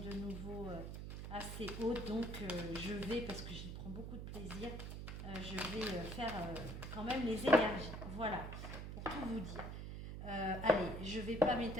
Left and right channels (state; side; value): noise; right; hum, 6 dB below the sound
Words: nouveau assez hautes, donc je vais, parce que j'y prends beaucoup de plaisir, je vais faire quand même les énergies. Voilà, pour tout vous dire. Allez, je ne vais pas